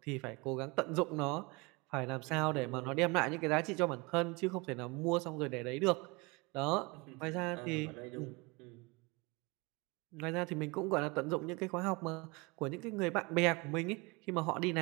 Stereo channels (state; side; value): quieter; left; 26.6 dB